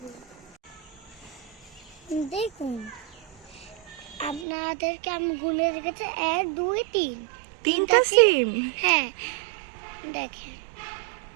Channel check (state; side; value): drops out; left; at 4.5 s